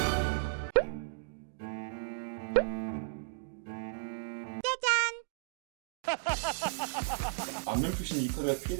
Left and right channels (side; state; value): left; silent; digital silence